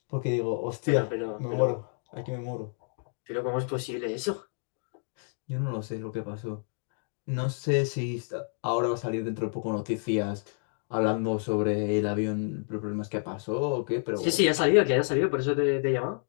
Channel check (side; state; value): right; silent; 58 dB below the other